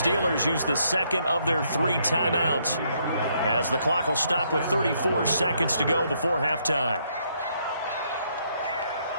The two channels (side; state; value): both; inverted; correlation -0.72